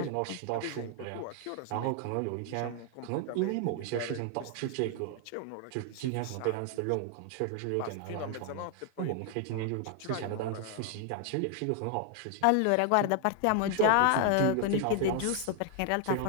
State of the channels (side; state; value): both; different; correlation 0.00